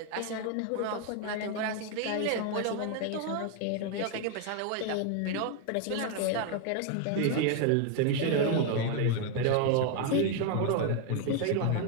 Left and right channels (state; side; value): different; both; correlation 0.01